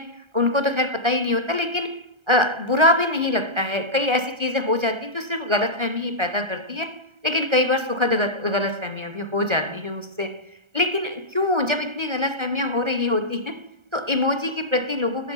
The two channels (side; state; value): left; late; 1.3 ms